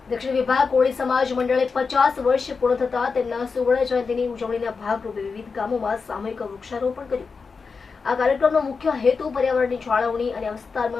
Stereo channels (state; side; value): quieter; right; 4.9 dB